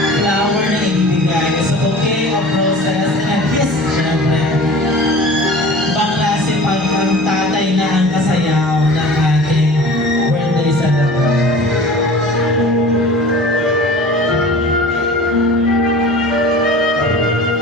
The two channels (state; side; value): normal; both; correlation 0.41